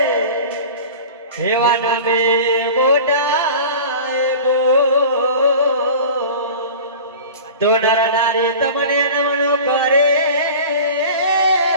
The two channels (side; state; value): both; inverted; correlation -0.37